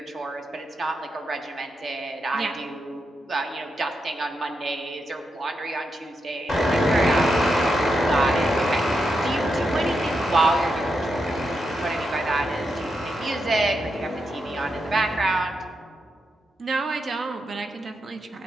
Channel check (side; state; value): both; normal; correlation 0.85